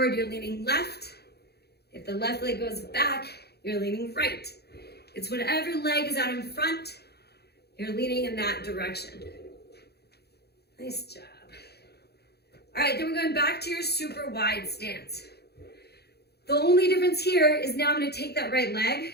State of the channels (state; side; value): late; right; 0.47 ms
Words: you're leaning left. If the left leg goes back, you're leaning right. It's whatever leg is out in front, you're leaning in that direction. Nice job. All right, then we're going back to your super wide stance. The only difference here is now I'm gonna take that right leg,